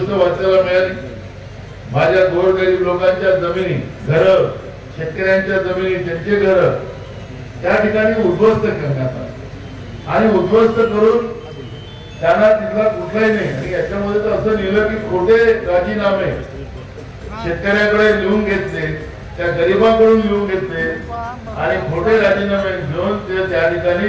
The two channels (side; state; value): both; identical; correlation 1.00